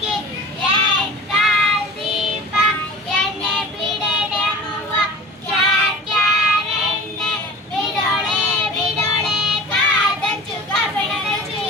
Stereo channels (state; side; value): normal; both; correlation 0.39